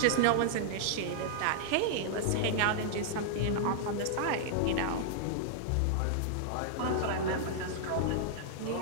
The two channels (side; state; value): both; different; correlation -0.01